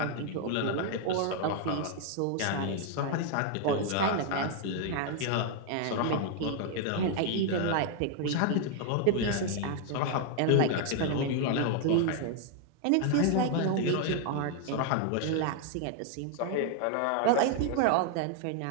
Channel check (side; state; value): both; different; correlation 0.00